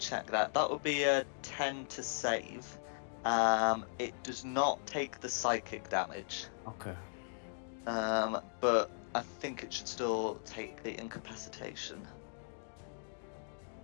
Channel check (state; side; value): silent; right; digital silence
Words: that, that would be a 10 to save. It does not take the psychic damage. Okay. But I think it should still take the incapacitation.